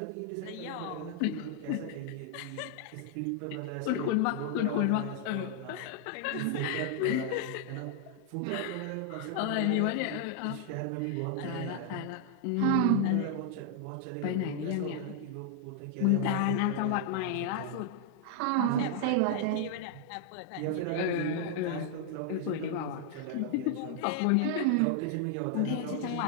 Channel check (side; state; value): both; different; correlation -0.01